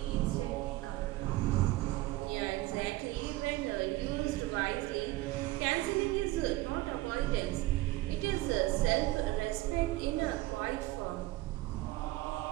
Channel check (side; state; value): left; quieter; 18.3 dB